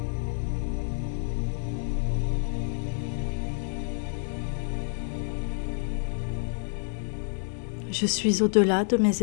Je suis au-delà de mes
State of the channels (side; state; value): right; silent; digital silence